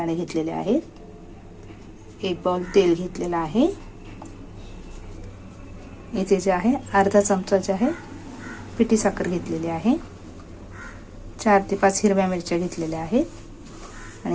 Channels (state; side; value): identical; both; correlation 1.00